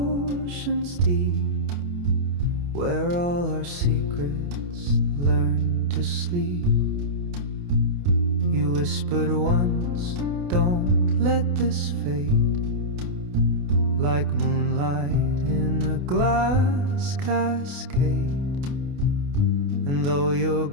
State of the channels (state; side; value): late; left; 28 ms